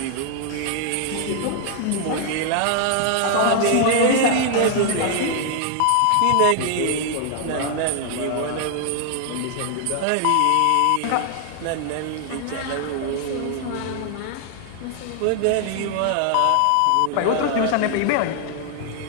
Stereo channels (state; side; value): different; both; correlation 0.00